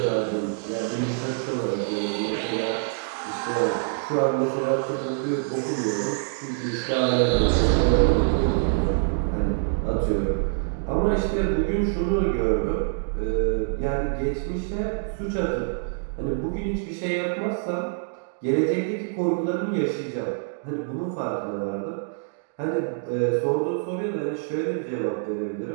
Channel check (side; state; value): left; silent; digital silence